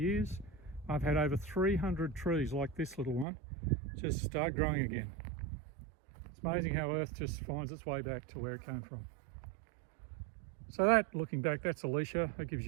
I've had over 300 trees like this little one just start growing again. It's amazing how Earth just finds its way back to where it came from. So that, looking back, that's Alicia. That gives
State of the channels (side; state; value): left; drops out; at 3.2 s